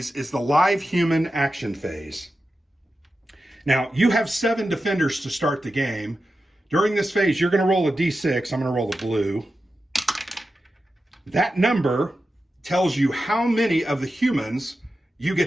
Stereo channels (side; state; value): both; normal; correlation 0.91